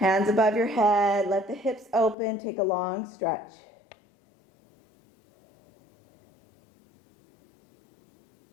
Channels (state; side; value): drops out; right; at 2.1 s